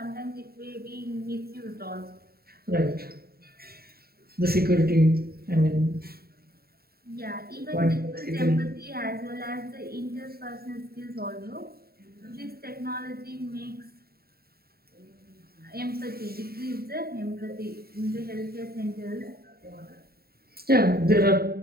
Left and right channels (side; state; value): left; late; 0.45 ms